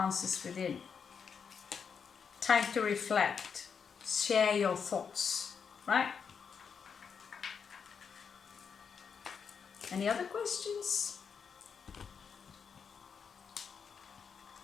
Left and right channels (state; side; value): quieter; right; 6.4 dB